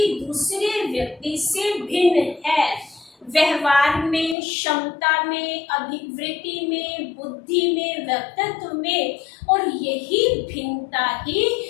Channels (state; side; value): drops out; right; at 4.4 s